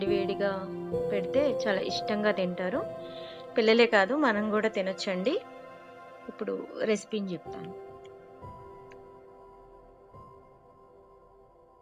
పెడితే చాలా ఇష్టంగా తింటారు. పిల్లలే కాదు, మనం కూడా తినొచ్చండి. ఇప్పుడు రెసిపీని చెప్తాను.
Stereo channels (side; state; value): both; identical; correlation 1.00